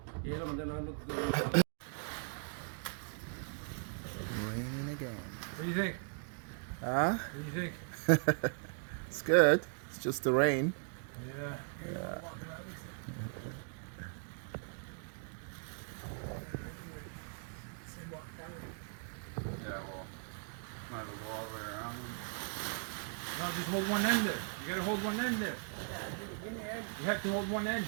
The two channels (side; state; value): left; silent; 52 dB below the other